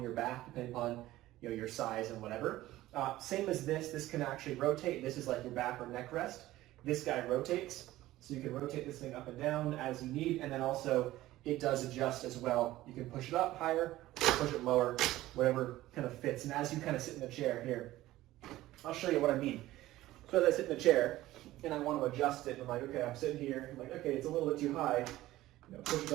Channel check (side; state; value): left; quieter; 16.1 dB